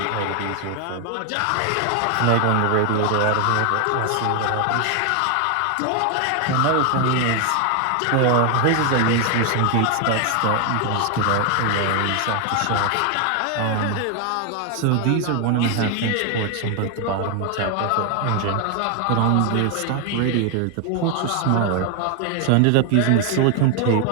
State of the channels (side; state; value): both; different; correlation 0.01